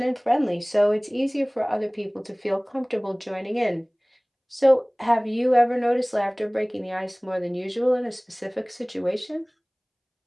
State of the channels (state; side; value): identical; both; correlation 1.00